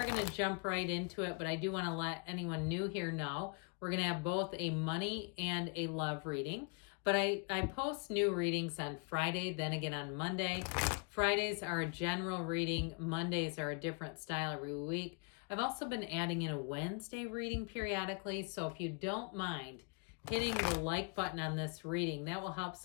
going to jump right into it, but I do want to let anyone new here know we're going to have both a money and a love reading. But I post new readings on Friday, then again on Monday. Fridays are a general reading. Mondays are a different style every week. I've also been adding in a Wednesday reading periodically. So if you don't mind hitting the like button on this reading, that will help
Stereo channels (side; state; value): right; quieter; 35.9 dB